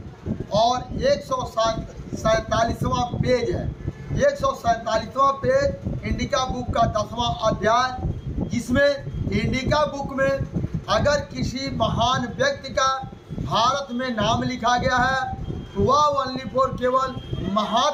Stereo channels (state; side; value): identical; both; correlation 1.00